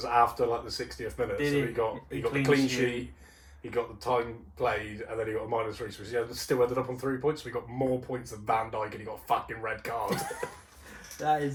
after like the 60th minute. So he got the clean sheet. He got the time played, and then he got a -3, so he still ended up on 3 points. So he got more points than Van Dijk, and he got a fucking red card.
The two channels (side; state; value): both; identical; correlation 1.00